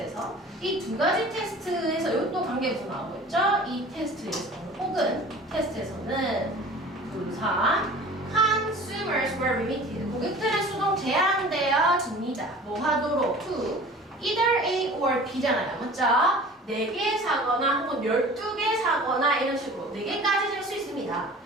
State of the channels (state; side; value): normal; both; correlation 0.43